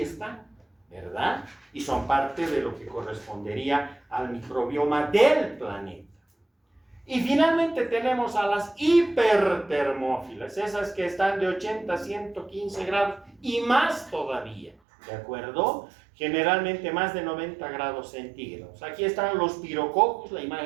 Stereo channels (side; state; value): left; drops out; at 14.8 s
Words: están, ¿verdad? Y son parte de lo que correspondería al microbioma del planeta. Y finalmente tenemos a las hipertermófilas, esas que están de 80 a 115 grados y más todavía, ¿de acuerdo? Generalmente más de 90 grados centígrados. Aquí están los pirococos, la